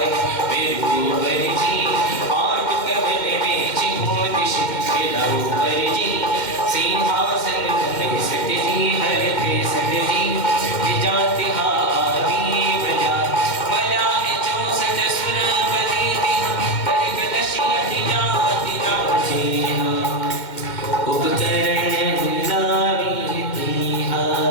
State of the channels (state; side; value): late; right; 2.1 ms